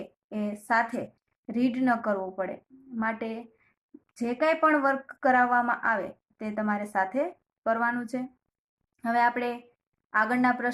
એ સાથે રીડ ન કરવો પડે। માટે જે કંઈ પણ વર્ક કરાવવામાં આવે તે તમારે સાથે કરવાનું છે। હવે આપણે આગળના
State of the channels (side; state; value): both; identical; correlation 1.00